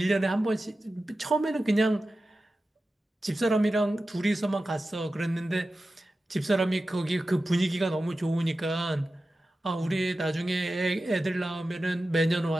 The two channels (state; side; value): normal; both; correlation 0.94